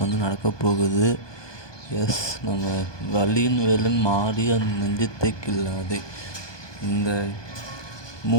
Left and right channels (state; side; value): late; right; 1.2 ms